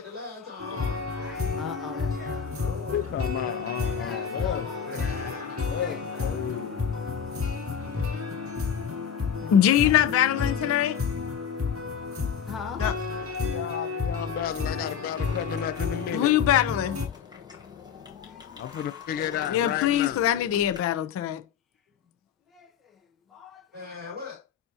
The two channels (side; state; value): right; quieter; 7.9 dB